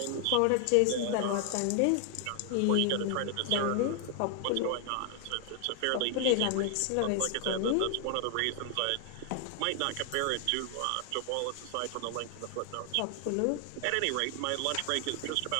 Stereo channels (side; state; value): both; different; correlation 0.00